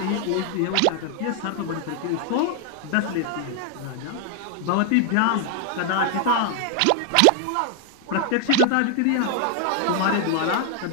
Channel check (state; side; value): different; both; correlation 0.00